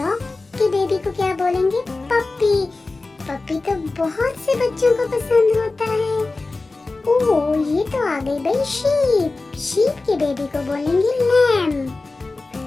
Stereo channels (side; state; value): right; quieter; 3.4 dB